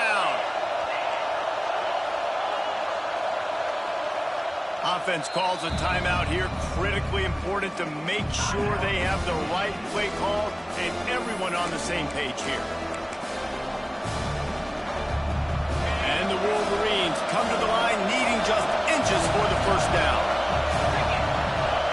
Offense calls a timeout here. Critically important to make sure they have the right play call and everyone on the same page here. And the Wolverines come to the line needing just inches for the first down.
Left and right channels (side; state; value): both; identical; correlation 1.00